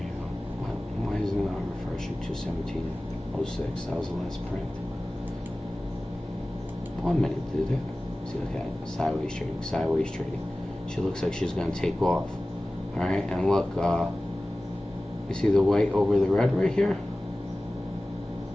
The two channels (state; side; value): normal; both; correlation 0.97